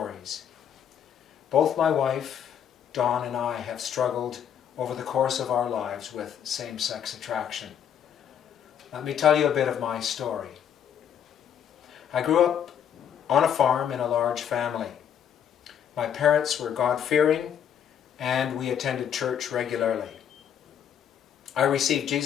Both my wife, Dawn, and I have struggled over the course of our lives with same-sex attraction. Let me tell you a bit of my story. I grew up on a farm in a large family. My parents were God-fearing and we attended church regularly. I received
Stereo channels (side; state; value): right; quieter; 8.9 dB